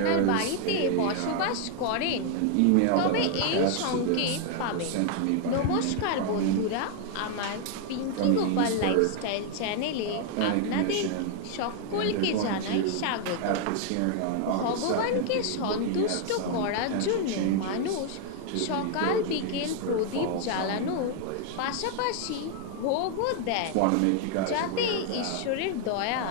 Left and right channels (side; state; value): both; different; correlation 0.00